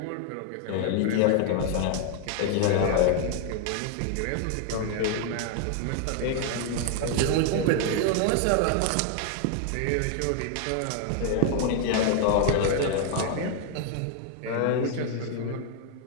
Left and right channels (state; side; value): different; both; correlation 0.00